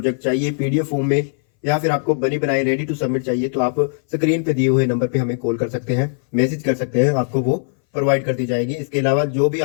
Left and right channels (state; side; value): silent; right; 61 dB below the other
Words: चाहिए PDF फॉर्म में या फिर आपको बनी बनाई रेडी टू सबमिट चाहिए तो आप स्क्रीन पे दिए हुए नंबर पे हमें कॉल कर सकते हैं, मैसेज कर सकते हैं, आपको वो प्रोवाइड कर दी जाएगी। इसके अलावा जो भी